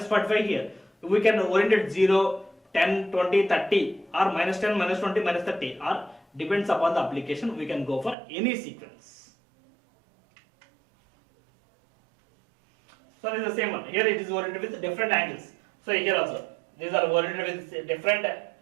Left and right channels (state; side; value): drops out; left; at 8.2 s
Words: 45 here. We can orient it 0, 10, 20, 30, or minus 10, minus 20, minus 30, or depends upon the application, we can go for any sequence. So it is the same one. Here it is oriented with different angles. So here also, these are oriented with different